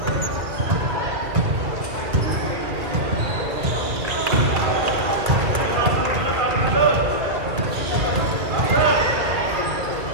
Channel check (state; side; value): late; left; 2.0 ms